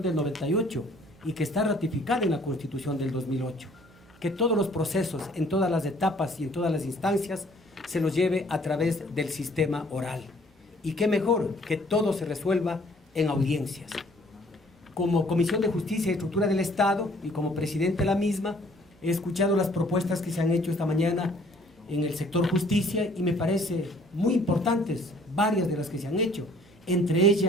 del 98 y que está ratificada en la Constitución del 2008, que todos los procesos, en todas las etapas y en todas las instancias, se los lleve a través del sistema oral. Y qué mejor que todo se resuelva en audiencias. Como Comisión de Justicia y Estructura del Estado y como presidente de la misma, he escuchado las propuestas que se han hecho esta mañana en el sector justicia y me parece muy importantes varias de las que se han hecho, entre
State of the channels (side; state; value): both; normal; correlation 0.58